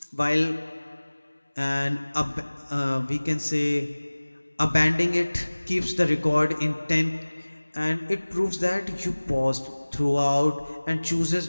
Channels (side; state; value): both; inverted; correlation -1.00